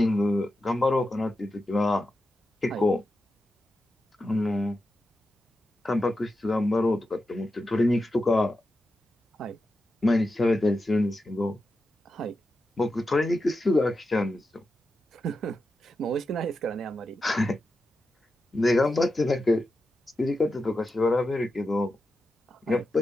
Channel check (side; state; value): both; normal; correlation 0.90